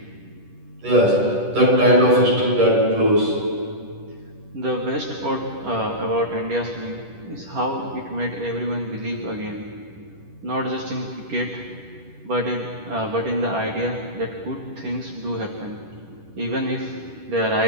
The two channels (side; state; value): left; late; 10 ms